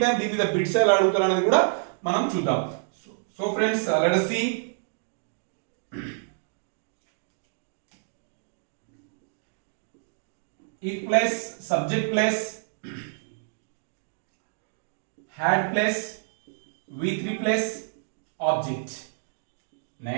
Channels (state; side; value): silent; left; digital silence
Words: టైం దీని మీద బిట్స్ ఎలా అడుగుతారు అనేది కూడా మనం చూద్దాం. So friends, let us see. If plus subject plus had plus V3 plus object.